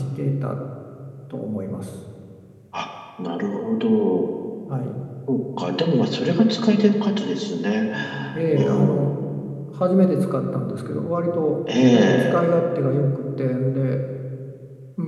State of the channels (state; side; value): identical; both; correlation 1.00